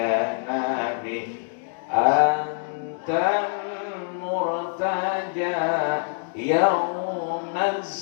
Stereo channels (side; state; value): right; silent; 62 dB below the other